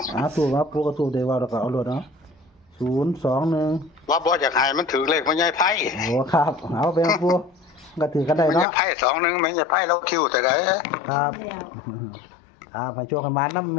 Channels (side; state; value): right; drops out; at 8.7 s